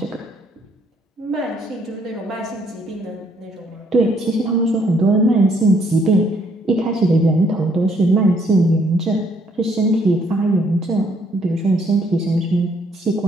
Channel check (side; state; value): both; normal; correlation 0.68